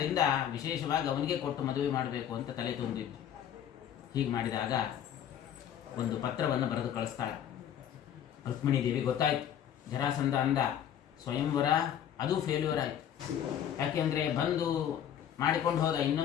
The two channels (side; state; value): right; quieter; 9.8 dB